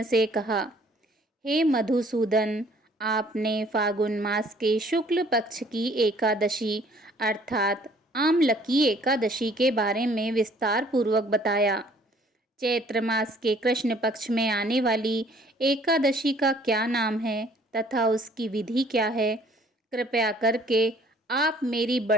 से कहा, हे मधुसूदन, आपने फागुन मास के शुक्ल पक्ष की एकादशी अर्थात आमलकी एकादशी के बारे में विस्तार पूर्वक बताया। चैत्र मास के कृष्ण पक्ष में आने वाली एकादशी का क्या नाम है तथा उसकी विधि क्या है, कृपया करके आप मेरी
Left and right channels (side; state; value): both; normal; correlation 0.58